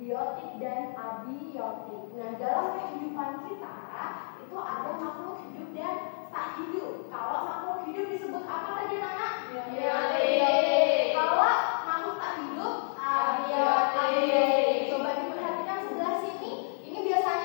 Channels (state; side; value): silent; right; digital silence